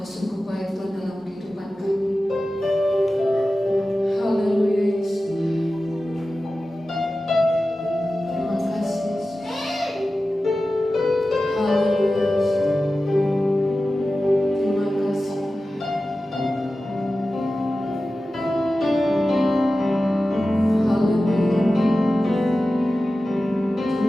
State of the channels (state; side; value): normal; both; correlation 0.94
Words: Engkau sungguh baik Tuhan dalam kehidupan kami. Haleluya Yesus. Terima kasih Yesus. Haleluya Yesus. Terima kasih. Haleluya.